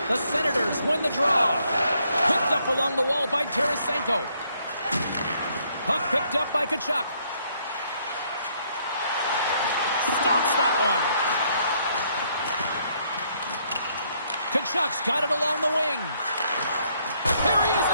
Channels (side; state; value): both; inverted; correlation -0.70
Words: The Senators win the draw. Picked up along the wall by Tarasenko. Puck picked up by Tkachuk. Stops that one. Tkachuk's got it along the wing. Here he is